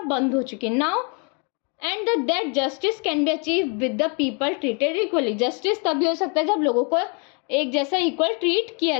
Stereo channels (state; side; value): quieter; right; 35.9 dB